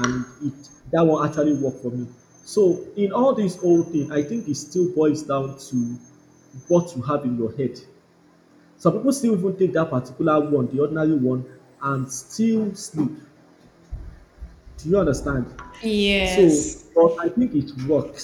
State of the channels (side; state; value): both; identical; correlation 1.00